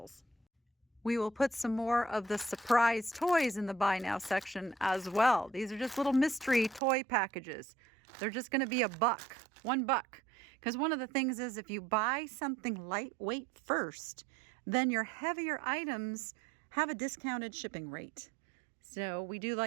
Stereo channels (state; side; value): drops out; left; at 6.8 s